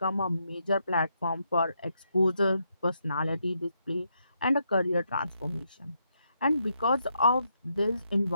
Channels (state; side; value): inverted; both; correlation -0.79